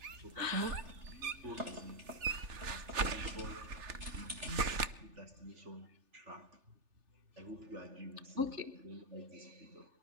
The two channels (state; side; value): late; left; 3.4 ms